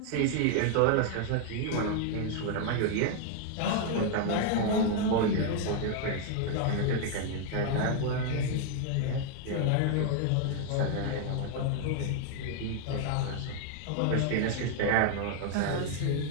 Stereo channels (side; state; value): both; different; correlation 0.00